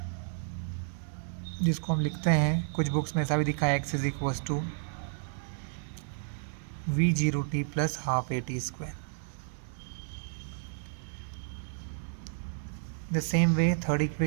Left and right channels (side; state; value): left; silent; digital silence